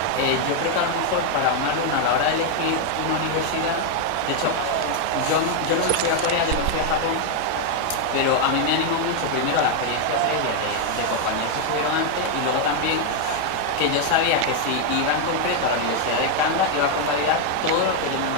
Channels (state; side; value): different; both; correlation 0.00